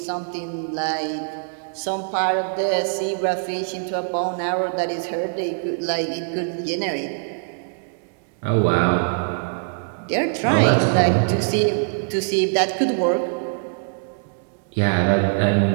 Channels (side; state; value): left; silent; digital silence